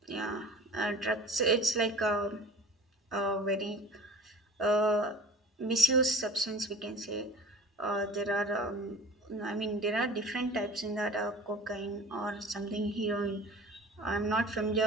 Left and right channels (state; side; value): normal; both; correlation 0.41